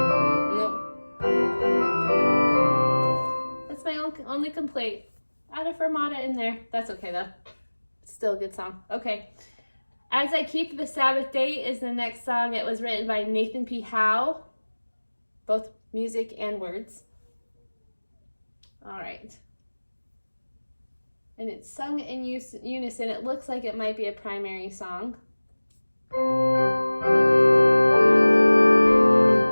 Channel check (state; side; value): inverted; both; correlation -1.00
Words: That's my only complaint. Add a fermata in there. That's okay though. Still a good song. Okay. As I Keep the Sabbath Day is the next song. It was written by Nathan P. Howe, both music and words. All right. And it's sung in unison. It looks like it might be a primary song.